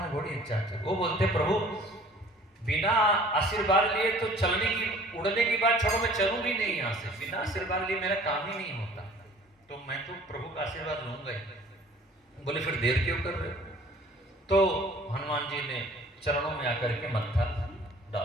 घोड़ी अच्छा थे, वो बोलते प्रभु बिना आशीर्वाद लिए तो चलने की उड़ने की बात छोड़ो, मैं चलूंगी नहीं यहाँ से। बिना आशीर्वाद लिए मेरा काम ही नहीं होता, तो मैं तो प्रभु का आशीर्वाद लूंगा ही। बोले फिर देर क्यों कर रहे हो? तो हनुमान जी ने चरणों में आकर के मत्था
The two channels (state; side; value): normal; both; correlation 0.50